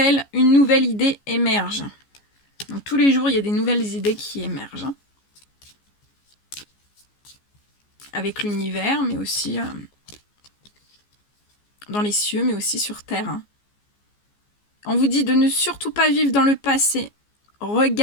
une nouvelle idée émerge. Donc tous les jours, il y a des nouvelles idées qui émergent. Hein. Avec l'univers, mais aussi dans les cieux, mais aussi sur Terre. Hein. On vous dit de ne surtout pas vivre dans le passé.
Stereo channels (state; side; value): late; right; 14 ms